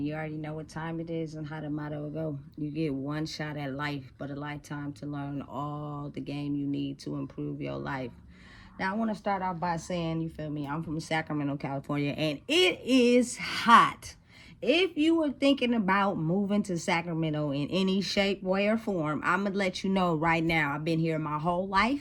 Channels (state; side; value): identical; both; correlation 1.00